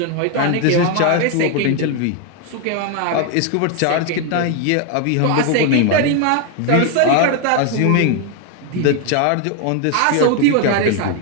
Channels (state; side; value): different; both; correlation 0.01